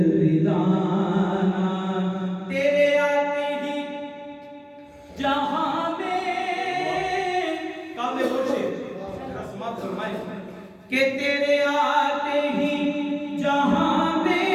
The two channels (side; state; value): both; identical; correlation 1.00